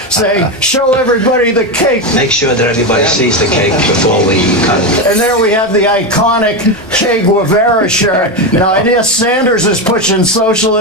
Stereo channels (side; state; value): both; normal; correlation 0.13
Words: saying, "Show everybody the cake." Make sure that everybody sees the cake before we cut it. And there we have the iconic Che Guevara shirt. Now, I guess Sanders is pushing